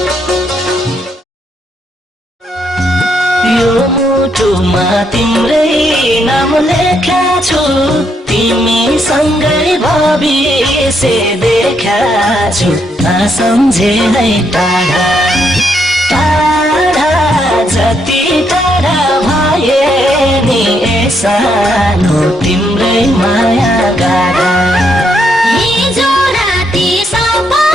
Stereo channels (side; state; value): both; normal; correlation 0.76